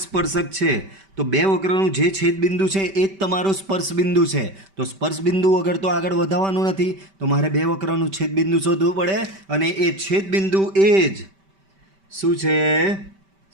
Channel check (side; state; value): left; late; 5.1 ms